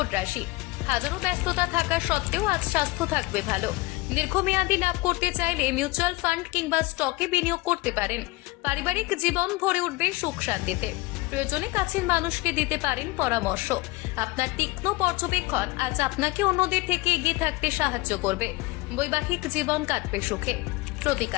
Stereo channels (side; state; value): right; quieter; 22.1 dB